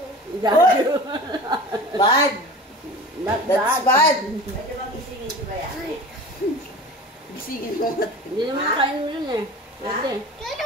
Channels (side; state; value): both; normal; correlation 0.37